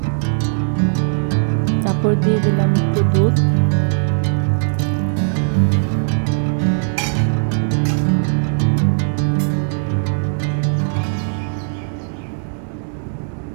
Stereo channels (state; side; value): silent; left; digital silence